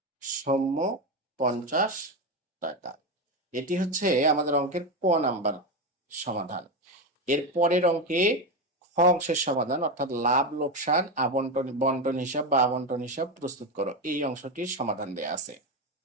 সৌম্য 50 টাকা। এটি হচ্ছে আমাদের অঙ্কের ক নাম্বার সমাধান। এর পরের অঙ্কে খ খ অংশের সমাধান অর্থাৎ লাভ লোকসান আবন্টন বন্টন হিসাব বা আবন্টন হিসাব প্রস্তুত করো, এই অংশটির সমাধান দেয়া আছে।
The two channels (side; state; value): both; normal; correlation 0.14